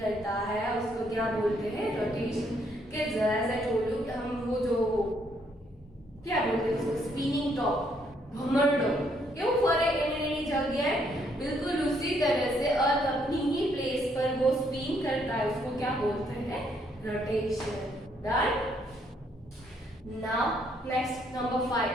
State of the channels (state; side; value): normal; both; correlation 0.71